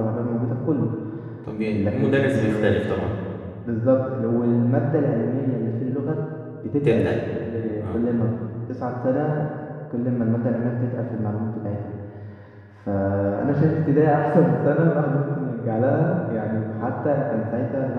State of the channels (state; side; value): identical; both; correlation 1.00